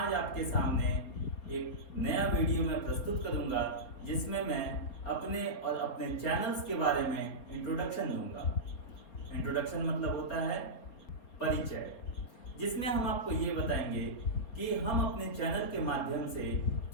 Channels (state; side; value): late; right; 4.3 ms